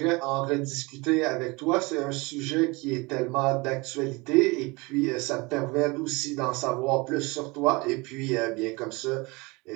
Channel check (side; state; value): left; quieter; 25.5 dB